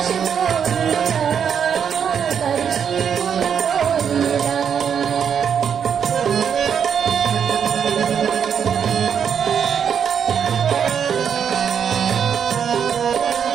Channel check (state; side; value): quieter; left; 7.7 dB